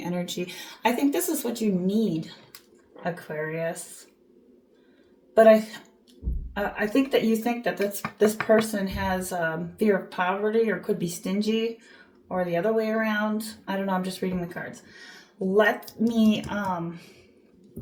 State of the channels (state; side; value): identical; both; correlation 1.00